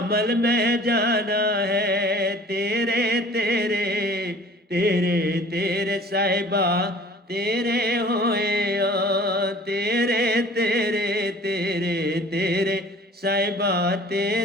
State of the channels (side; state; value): both; normal; correlation 0.48